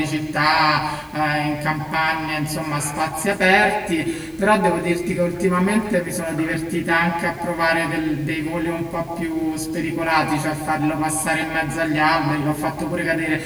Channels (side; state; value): both; identical; correlation 1.00